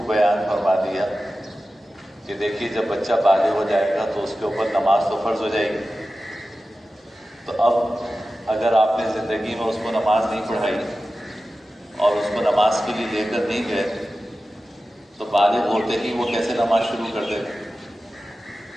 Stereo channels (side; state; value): both; normal; correlation 0.94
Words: بیان فرما دیا کہ دیکھیے جب بچہ بالغ ہو جائے گا تو اس کے اوپر نماز تو فرض ہو جائے گی، تو اب اگر آپ نے زندگی میں اس کو نماز نہیں پڑھائی اور اس کو نماز کے لیے لے کر نہیں گئے تو بالغ ہوتے ہی وہ کیسے نماز شروع کر دے گا؟